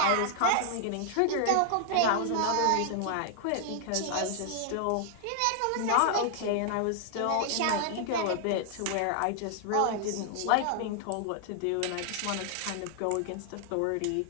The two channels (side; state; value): both; different; correlation 0.00